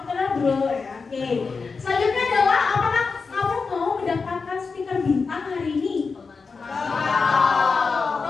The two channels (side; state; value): right; quieter; 4.7 dB